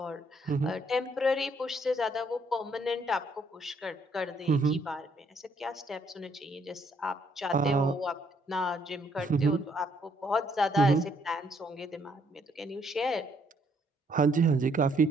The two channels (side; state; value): both; normal; correlation 0.69